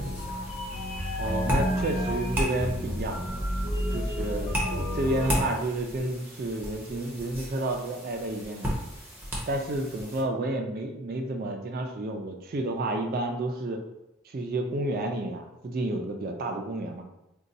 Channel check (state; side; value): normal; both; correlation 0.55